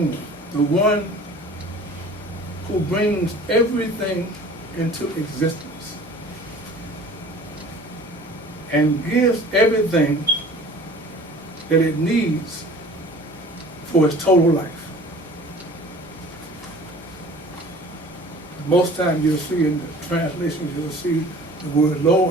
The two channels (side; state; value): both; normal; correlation 0.46